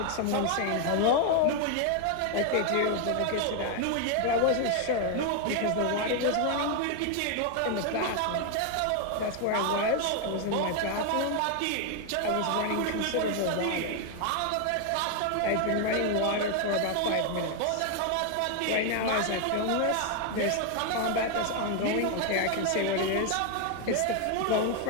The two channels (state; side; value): different; both; correlation 0.00